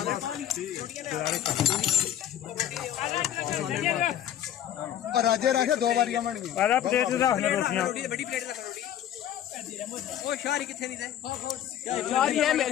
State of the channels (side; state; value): right; quieter; 11.0 dB